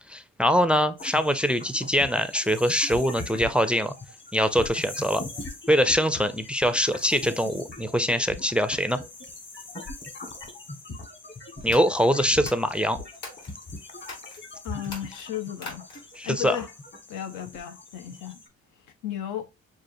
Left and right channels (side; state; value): both; normal; correlation 0.66